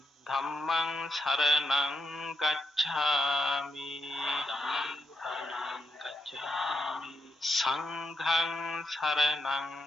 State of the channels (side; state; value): both; normal; correlation 0.82